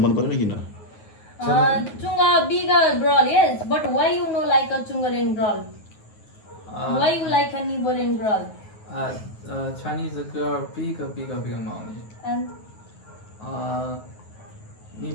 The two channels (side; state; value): right; late; 9.4 ms